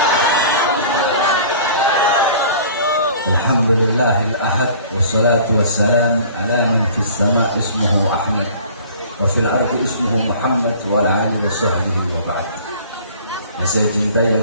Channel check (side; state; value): both; inverted; correlation -0.47